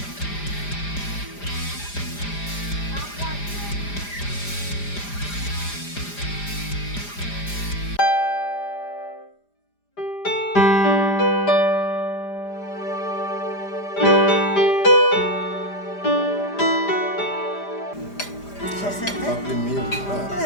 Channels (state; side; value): late; right; 5.0 ms